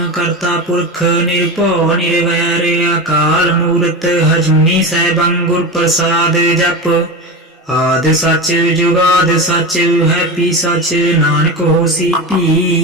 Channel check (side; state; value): both; normal; correlation 0.23